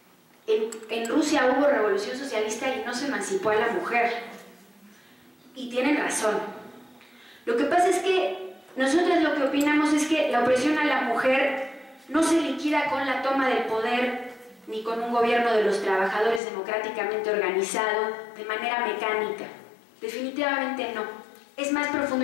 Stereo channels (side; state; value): right; drops out; at 16.4 s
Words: en Rusia hubo revolución socialista y no se emancipó a la mujer. Y tienen razón. Lo que pasa es que nosotros lo que opinamos es que la opresión a la mujer no se liquida con la toma del poder ni con un gobierno de los trabajadores democráticamente organizado de manera mecánica. Definitivamente no. Es más